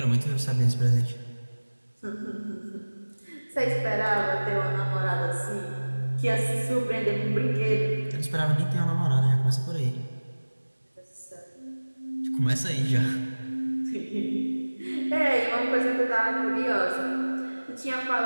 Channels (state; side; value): inverted; both; correlation -1.00